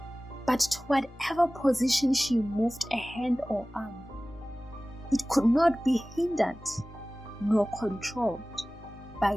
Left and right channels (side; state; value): both; normal; correlation 0.98